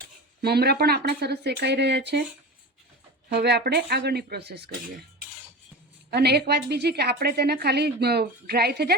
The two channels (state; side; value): normal; both; correlation 0.29